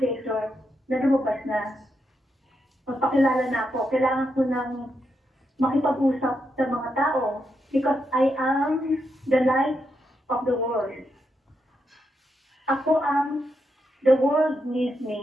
Creator, na lumabas na. Magpakilala na ako. Kailangan ko ng makipag-usap sa mga tao because I am the light of the world. Ako the world needs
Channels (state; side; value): normal; both; correlation 0.83